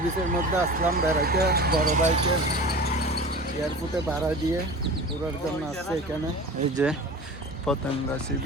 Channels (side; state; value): both; normal; correlation 0.36